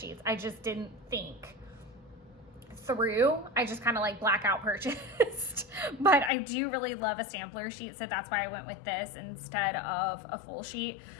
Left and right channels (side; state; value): right; drops out; at 6.3 s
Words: I just didn't think through. I just kind of like blackout purchased. But I do really love a sampler sheet, so that's why I went with this instead of a full sheet,